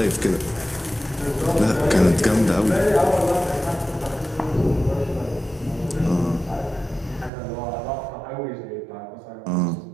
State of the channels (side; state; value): left; drops out; at 7.3 s